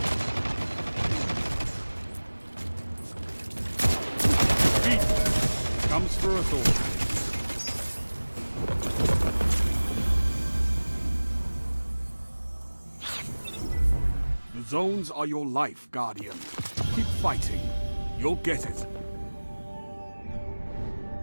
Beat comes for us all. The zones are your life, Guardian. Keep fighting. You'll get it.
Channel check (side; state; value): both; inverted; correlation -1.00